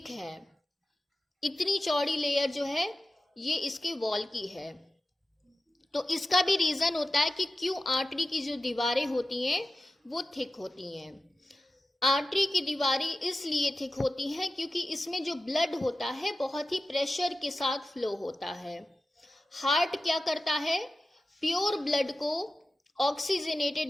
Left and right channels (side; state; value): both; normal; correlation 0.94